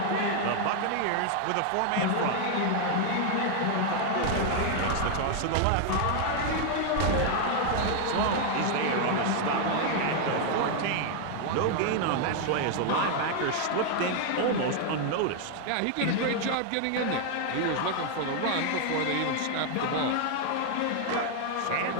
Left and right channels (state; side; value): different; both; correlation 0.00